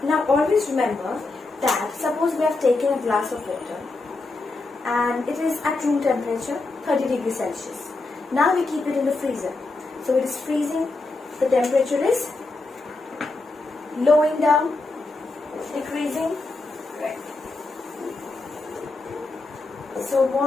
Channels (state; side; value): quieter; right; 3.3 dB